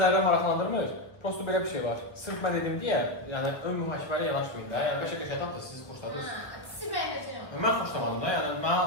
zərrə maraqlandırmır. Prosto belə bir şey var. Sırf mən dedim deyə, yəni ön mühakimələ yanaşmayın da. Yəni beşə qəşəng tatlı siz xoşladınız. Sizi beğeneceğim. Mən xoşlamadım da, yəni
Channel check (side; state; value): right; late; 1.0 ms